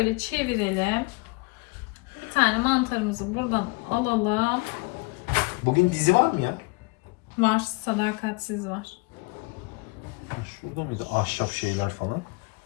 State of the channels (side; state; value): right; quieter; 28.6 dB